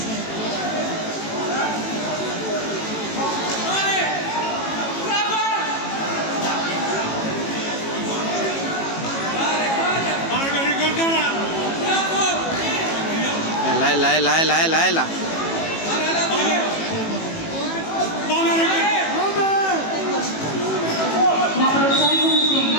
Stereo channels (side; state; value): right; late; 18 ms